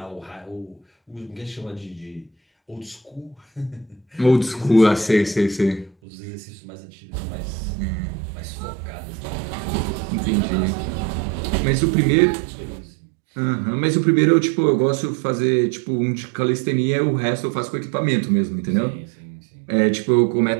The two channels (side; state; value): left; drops out; at 6.0 s